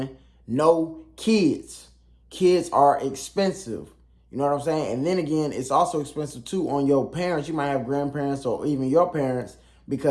No kids. Kids are expensive. You know what I'm saying? And then again, it's also expensive too on your parents. You might have grandparents or even your parents,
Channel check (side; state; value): both; identical; correlation 1.00